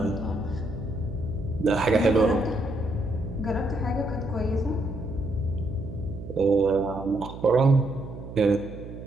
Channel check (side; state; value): right; noise; hum, 12 dB below the sound